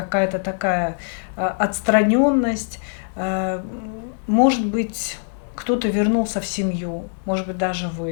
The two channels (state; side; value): silent; right; digital silence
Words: такая отстраненность. Может быть, кто-то вернулся в семью, может быть, даже